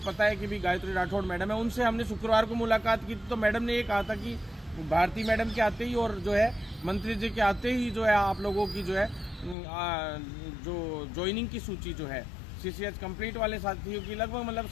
है कि भी गायत्री राठौड़ मैडम है। उनसे हमने शुक्रवार को मुलाकात की तो मैडम ने ये कहा था कि भारती मैडम के आते ही और जो है मंत्री जी के आते ही जो है आप लोगों की जो है जो ज्वाइनिंग की सूची जो है सीसीएच कंप्लीट वाले साथियों की लगभग मतलब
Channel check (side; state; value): right; drops out; at 9.6 s